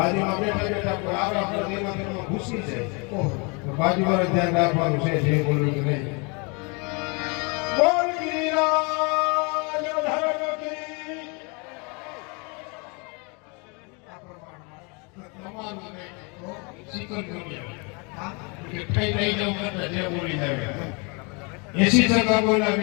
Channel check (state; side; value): quieter; right; 32.0 dB